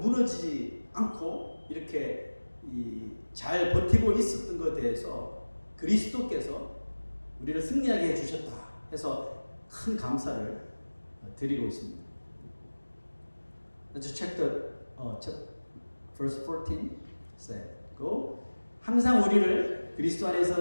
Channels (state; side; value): inverted; both; correlation -1.00